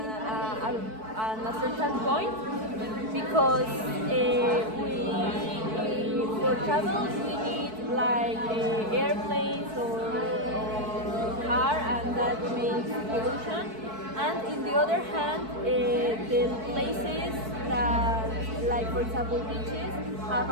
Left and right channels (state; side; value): late; left; 4.6 ms